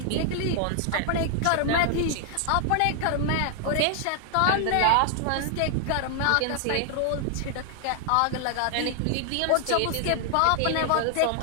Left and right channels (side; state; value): both; different; correlation 0.00